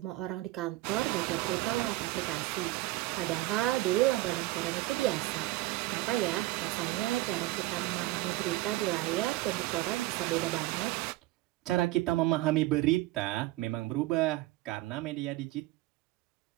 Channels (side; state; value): left; quieter; 17.8 dB